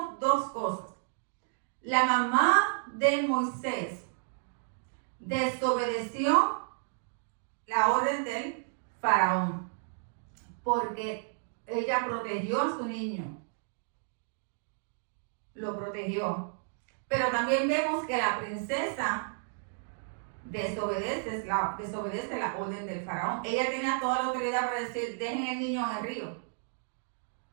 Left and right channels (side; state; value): left; silent; digital silence